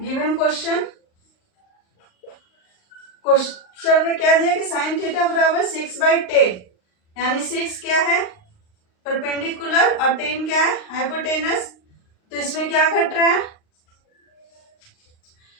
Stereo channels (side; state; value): right; late; 38 ms